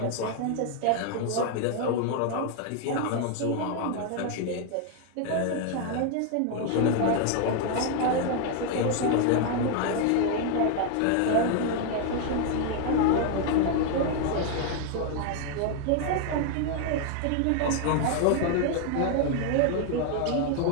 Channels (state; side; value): different; both; correlation 0.00